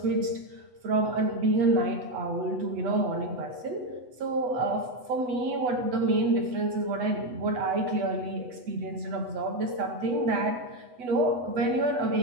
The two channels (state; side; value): late; left; 8.1 ms